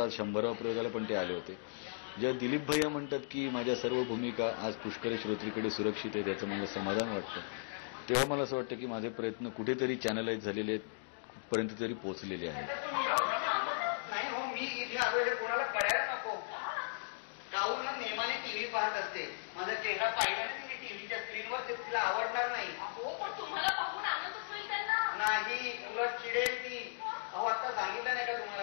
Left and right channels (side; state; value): right; silent; digital silence